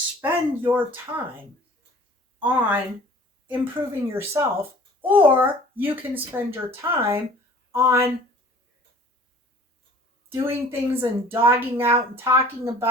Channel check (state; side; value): normal; both; correlation 0.48